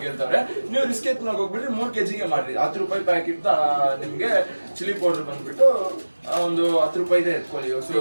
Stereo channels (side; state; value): both; inverted; correlation -1.00